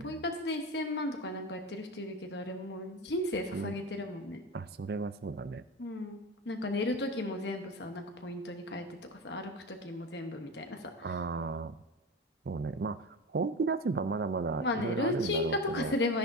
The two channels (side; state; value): both; normal; correlation 0.26